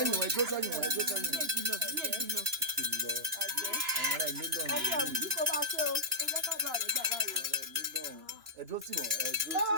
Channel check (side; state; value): left; late; 2.9 ms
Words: wọ̀ ẹ dúró sẹ́yìn wọ̀ ẹ dúró sẹ́yìn wọ̀. àwọn ará ilé lọ́rùn. ẹni àwùjọ kó máa ṣe o ó jẹ́ ká bá rẹ̀ gbà báyìí. ẹ dúró tì wọ́n ẹ dúró tì